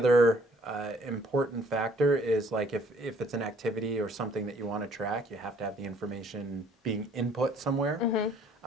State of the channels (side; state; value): both; normal; correlation 0.60